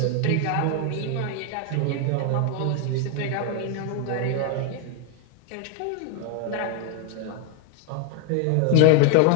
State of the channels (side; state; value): both; different; correlation 0.01